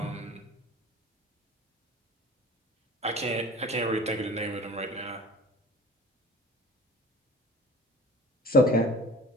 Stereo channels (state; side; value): normal; both; correlation 0.42